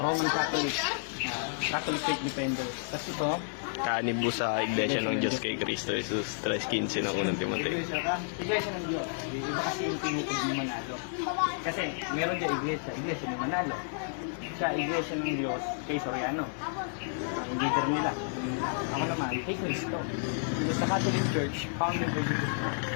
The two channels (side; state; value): right; silent; 57 dB below the other